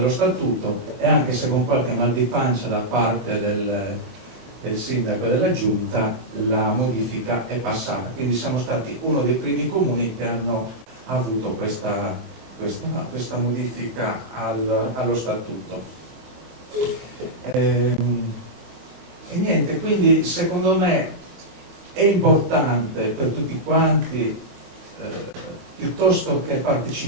statuto, e anche se con qualche mal di pancia da parte del sindaco e della giunta, la modifica è passata. Quindi siamo stati uno dei primi comuni che hanno avuto questa modifica allo statuto. E niente, quindi secondo me è importante per tutti quanti, piuttosto che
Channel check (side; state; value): left; late; 23 ms